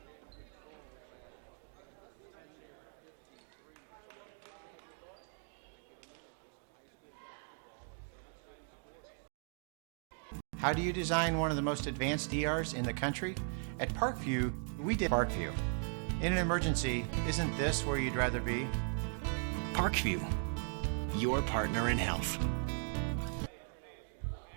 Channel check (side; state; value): left; silent; 52 dB below the other